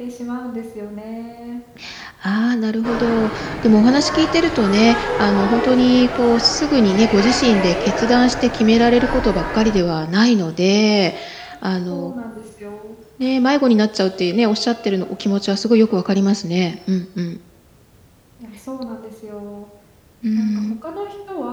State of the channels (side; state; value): both; identical; correlation 1.00